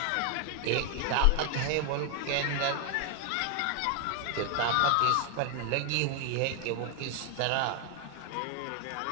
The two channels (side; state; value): both; different; correlation 0.00